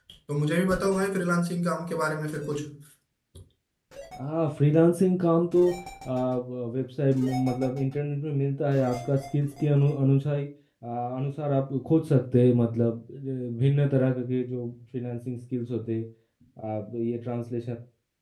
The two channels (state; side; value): identical; both; correlation 1.00